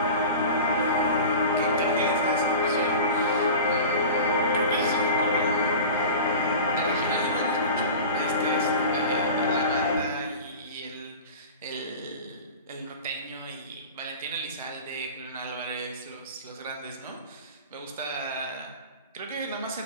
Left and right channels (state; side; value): inverted; both; correlation -0.34